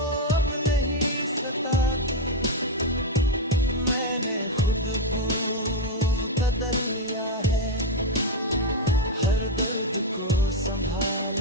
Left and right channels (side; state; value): both; normal; correlation 0.03